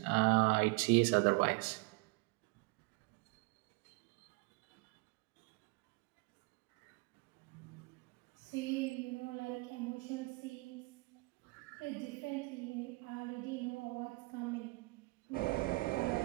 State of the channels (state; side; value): quieter; left; 25.8 dB